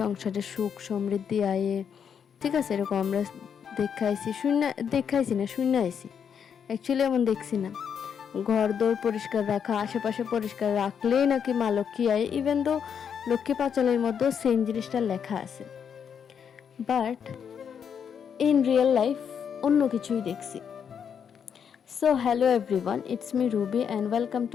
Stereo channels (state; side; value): quieter; right; 7.6 dB